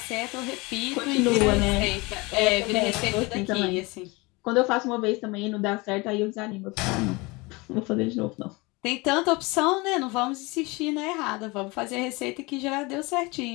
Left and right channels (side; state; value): right; quieter; 25.1 dB